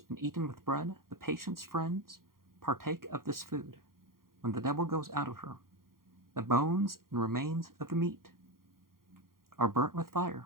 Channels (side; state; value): left; late; 0.92 ms